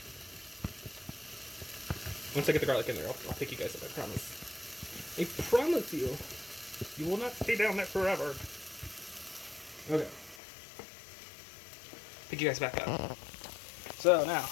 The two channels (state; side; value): drops out; right; at 10.4 s